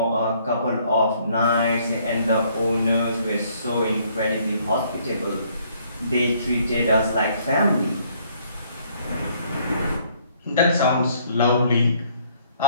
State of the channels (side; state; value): both; inverted; correlation -0.63